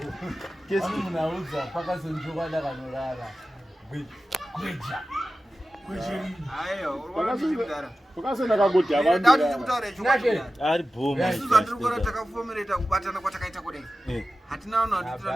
Kesi munauza paka sonjoka ndakanolala. Kweja. Ayo, urwanda. Ukasena kakuti abantu. Ndati kutaura chokati. Ari boma. Isuzu andikora takafomereta kubatana kwatakaita kudai. Hatina vanhu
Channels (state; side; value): normal; both; correlation 0.94